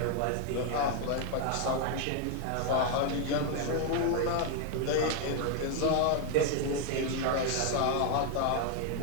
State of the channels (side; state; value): both; different; correlation 0.00